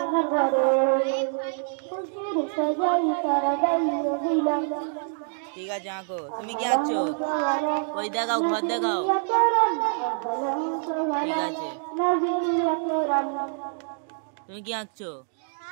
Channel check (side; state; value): left; silent; 61 dB below the other